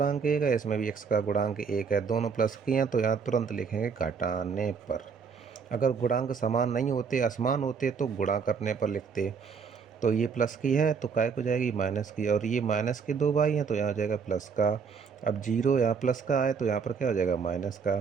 1 है, इसमें भी x का गुणांक 1 है, दोनों प्लस किए हैं, तो यहाँ तुरंत लिखेंगे घटाने पर। अगर गुणांक समान नहीं होते, असमान होते, तो गुणा करने पर लिखते। तो ये प्लस की है तो काय को जाएगी माइनस की, और ये माइनस के 2y हैं तो यहाँ हो जाएगा प्लस का। अब 0 यहाँ प्लस का है तो यहाँ पर क्या हो जाएगा? माइनस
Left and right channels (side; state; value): left; quieter; 5.9 dB